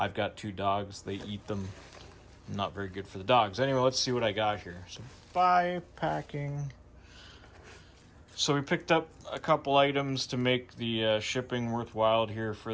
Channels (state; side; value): identical; both; correlation 1.00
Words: got 2 dogs. They eat them. Not very good for the dogs. Anyway, let's see what I got here. So buy packing. So we picked up a couple items to make the shipping worthwhile here for